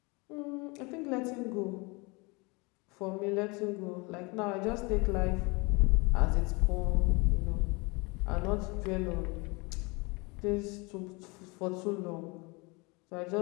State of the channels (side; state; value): right; quieter; 27.6 dB